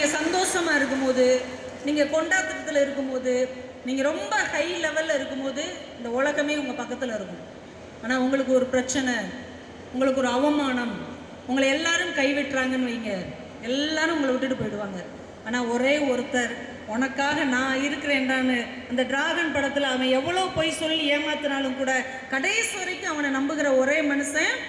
சந்தோஷமாக இருக்கும்போது, நீங்கள் கொண்டாட்டத்தில் இருக்கும்போது, நீங்கள் ரொம்ப ஹை லெவலில் இருக்கும்போது இந்த உலகமே உங்கள் பக்கத்தில் இருக்கும். ஆனால் உங்களுக்கு ஒரு பிரச்சனை, உங்களுக்கு ஒரு அவமானம், உங்களை எல்லாரும் கைவிட்டுறாங்கன்னு வைங்க, எல்லாரும் உங்களை விட்டுட்டு போயிடுவாங்க. ஆனால் ஒரே ஒருத்தர் உனக்காக நான் இருக்கிறேன்டான்னு அந்த டிராகன் படத்தில் அவன் எவ்வளோ பொய் சொல்லி ஏமாத்தினாலும் கூட கடைசி வரைக்கும் அவனை நம்புகிற ஒரே மனுஷன்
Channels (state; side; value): identical; both; correlation 1.00